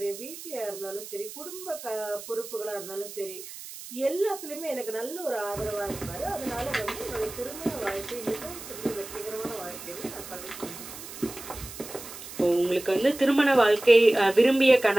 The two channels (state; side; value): noise; right; hiss, 13 dB below the sound